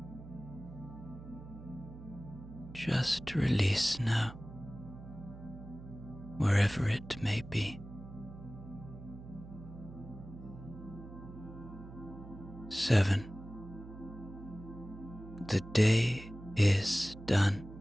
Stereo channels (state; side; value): noise; right; hum, 14 dB below the sound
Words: Just release now. wherever it may be. 7. The day is done.